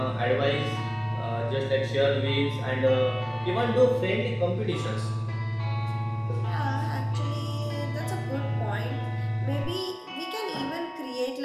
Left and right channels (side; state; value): both; identical; correlation 1.00